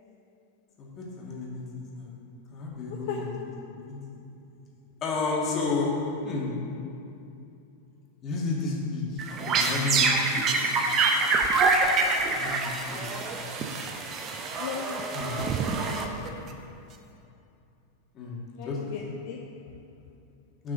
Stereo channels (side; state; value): both; normal; correlation 0.21